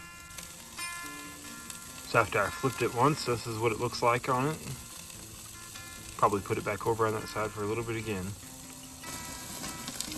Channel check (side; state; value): both; identical; correlation 1.00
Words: So after I flipped it once, this is what it looks like on it. Probably put it back over on that side for a little bit again.